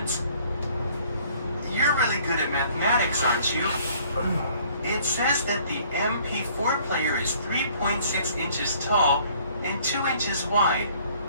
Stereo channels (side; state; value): both; inverted; correlation -0.58